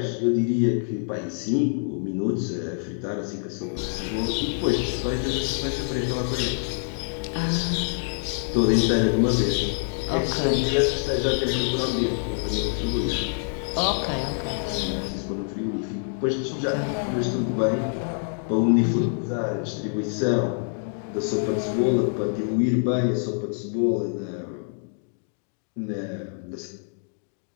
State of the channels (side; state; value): right; silent; digital silence